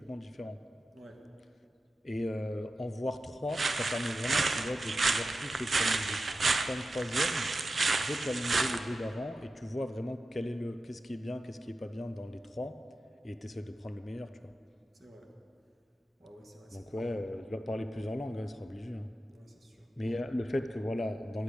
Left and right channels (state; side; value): normal; both; correlation 0.92